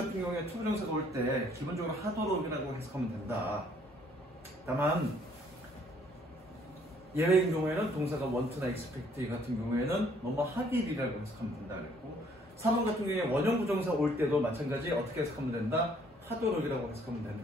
경우에 투부정사가 올 때 기본적으로 하도록이라고 해석하면 된다. 다만 예외인 경우에는 동사가 want나 expect 같은 경우에는 뭐뭐 하길이라고 해석하면 된다 그랬고, 3번 같은 경우에 원형 부정사 올 때도 마찬가지 어떻게 해석하면 된다? 하도록이라고 해석하면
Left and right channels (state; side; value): normal; both; correlation 0.62